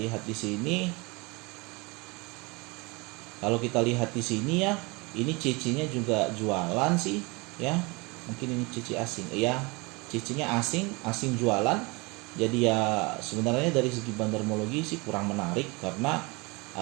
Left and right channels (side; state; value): left; quieter; 26.7 dB